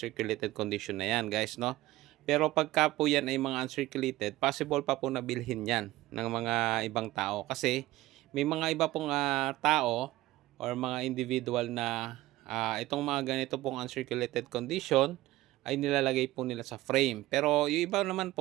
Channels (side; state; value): left; quieter; 17.1 dB